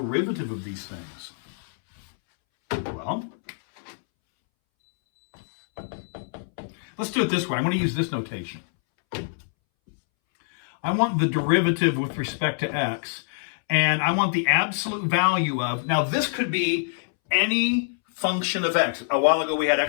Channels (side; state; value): right; silent; 62 dB below the other